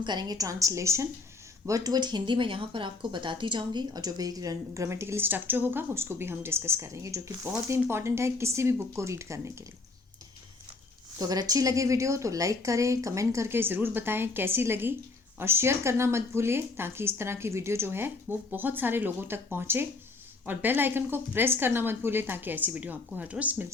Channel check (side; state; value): right; quieter; 3.8 dB